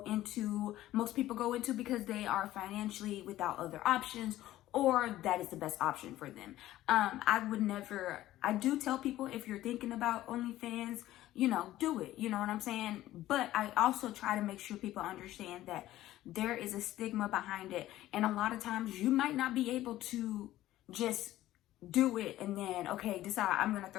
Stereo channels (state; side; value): quieter; right; 14.7 dB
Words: into, most people go into because they are financially without other options, or that is the best option for them. I do tell people, if you're thinking about OnlyFans, do it, you know what I'm saying? But I also try to make sure people understand that there is a stigma behind it. And a lot of times you might not be able to just do it and then, okay, decide I'm going to